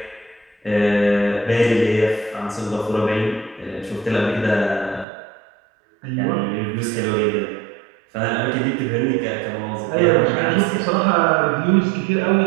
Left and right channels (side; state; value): left; drops out; at 5.1 s